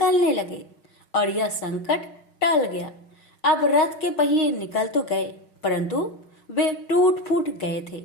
लगे और यह संकट टल गया। अब रथ के पहिए निकल तो गए परंतु वे टूट फूट गए थे,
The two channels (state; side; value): late; right; 6.4 ms